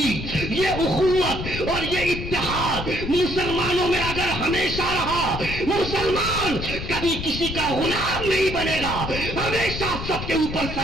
یہ اخوت اور یہ اتحاد مسلمانوں میں اگر ہمیشہ رہا, مسلمان کبھی کسی کا غلام نہیں بنے گا, ہمیشہ سب کے اوپر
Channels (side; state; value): left; noise; rumble, 7 dB below the sound